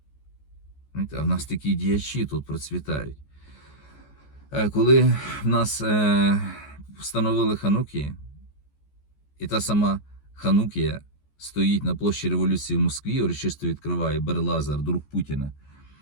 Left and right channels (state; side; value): late; right; 14 ms